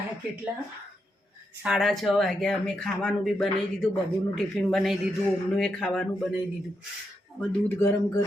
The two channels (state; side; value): normal; both; correlation 0.83